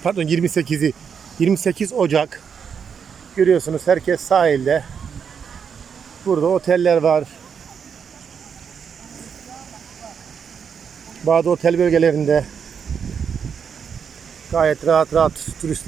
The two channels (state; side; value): quieter; left; 6.9 dB